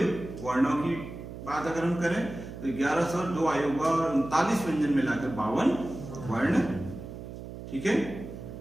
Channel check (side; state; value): right; noise; hum, 11 dB below the sound